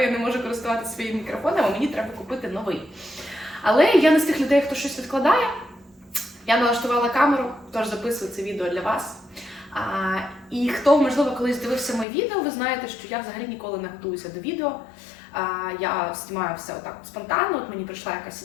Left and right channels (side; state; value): right; drops out; at 12.1 s